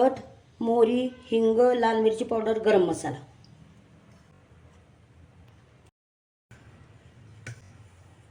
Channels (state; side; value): identical; both; correlation 1.00